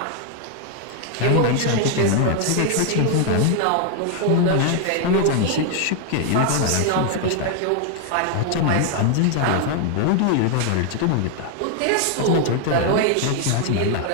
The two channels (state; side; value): different; both; correlation 0.00